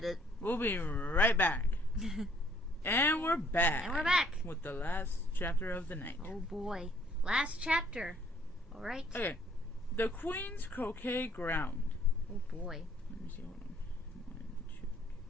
We'll be right back. And we're back. And we're back. With the last chapter of the night. Oh boy. Last chapter. Alright. Okay. The Queen's Croquet Ground. Oh boy. Let me see. Hold on. 1, 2, 3, 4,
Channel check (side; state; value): both; normal; correlation 0.62